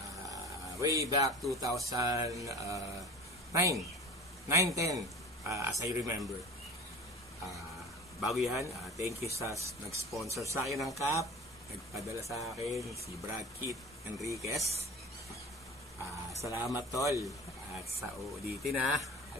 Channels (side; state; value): both; normal; correlation 0.37